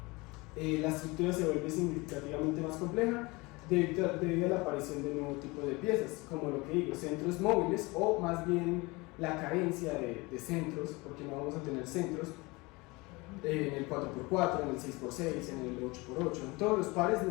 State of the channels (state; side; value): quieter; right; 24.4 dB